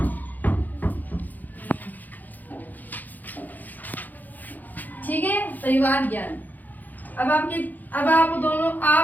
ठीक है, परिवार ज्ञान। अब आप दोनों,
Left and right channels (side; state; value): right; late; 0.083 ms